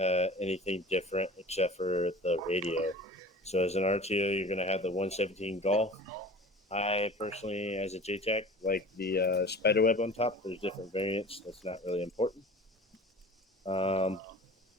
anything different except for the radio. So as an RTO, you're going to have the 117 Golf. I personally, as a JTAC, like the spiderweb on top. There's different variants. That's not really important. If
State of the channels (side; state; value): both; normal; correlation 0.41